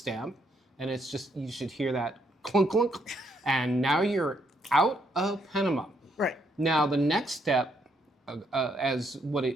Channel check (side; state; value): both; normal; correlation 0.74